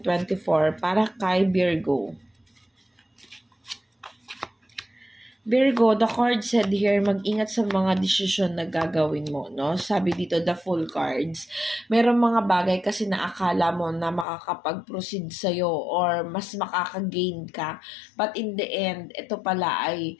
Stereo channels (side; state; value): right; drops out; at 14.2 s